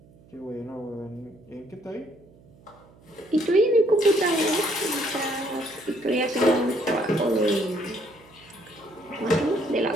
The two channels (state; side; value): noise; right; hum, 26 dB below the sound